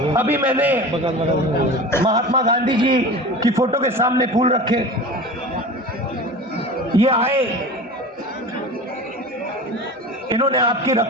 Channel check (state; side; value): normal; both; correlation 0.34